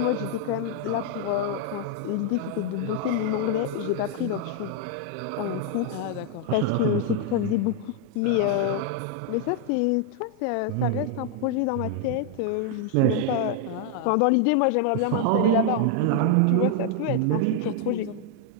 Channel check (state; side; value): different; both; correlation 0.00